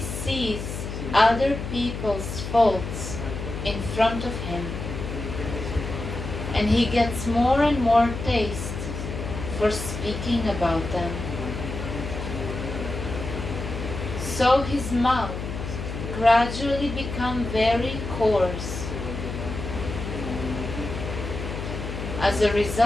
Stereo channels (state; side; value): noise; left; hum, 6 dB below the sound